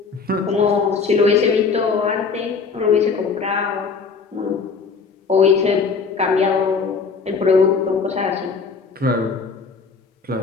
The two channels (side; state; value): right; quieter; 5.1 dB